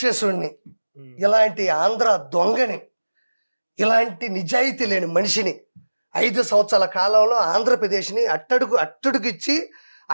హ్మ్. ఇలాంటి ఆంధ్ర దొంగని, ఇలాంటి నిజాయితీ లేని మనిషిని 5 సంవత్సరాల కాలంలో ఆంధ్రప్రదేశ్ని అట్టడుగిచ్చి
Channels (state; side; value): inverted; both; correlation -1.00